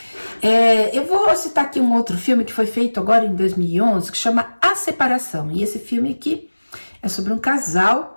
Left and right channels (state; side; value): inverted; both; correlation -1.00